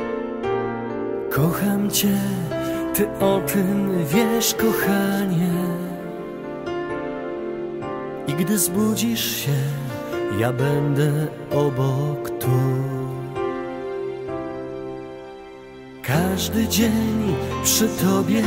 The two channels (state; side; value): identical; both; correlation 1.00